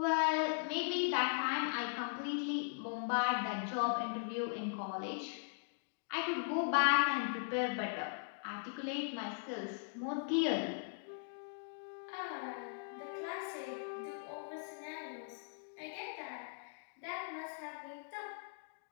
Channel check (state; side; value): silent; right; digital silence